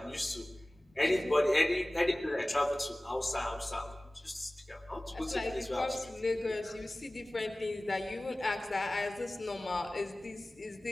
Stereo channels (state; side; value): normal; both; correlation 0.98